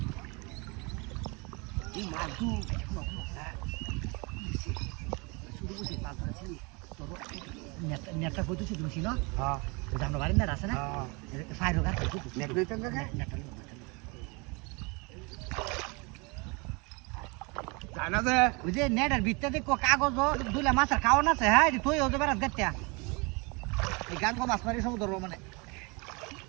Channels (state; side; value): quieter; left; 29.1 dB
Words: এই মাদু শুরু করতে পারছ তোর নেটটা কইতেছি তুমি না হ্যাঁ জানো বাড়ি না আছে না ফাইরো গাছ নেট লইতেন না নেটটা জানা যে ওই যে নেটের ভিতরে কাগজ দুলে মাছের খাওয়ান আছে হ্যাঁ তুই ওদের বেড়াত গাচ্ছা এই গান কো মাছ মারি সব ধরবো মানে